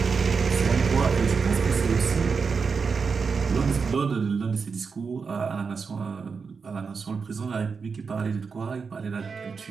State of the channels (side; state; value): left; quieter; 5.3 dB